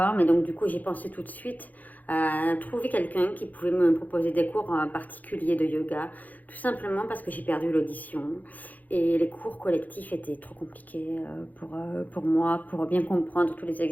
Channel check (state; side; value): late; right; 0.081 ms